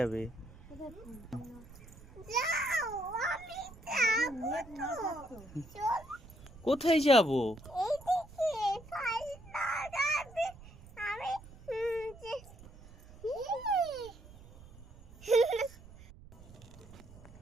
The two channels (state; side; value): noise; right; rumble, 19 dB below the sound